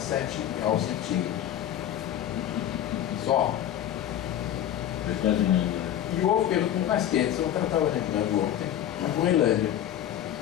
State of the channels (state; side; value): quieter; right; 11.1 dB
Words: graus centígrados. Só. É quase nada. E houve período muito mais quente, eu estava lembrando ontem, na Groenlândia.